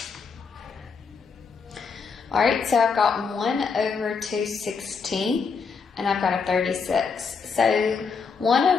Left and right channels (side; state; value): right; quieter; 5.4 dB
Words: All right, so I've got 1 over 216, and I've got a 36. So 1